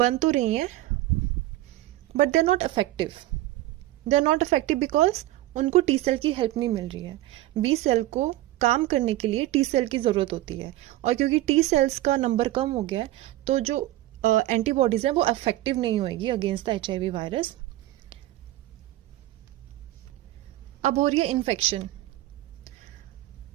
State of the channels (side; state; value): left; quieter; 16.0 dB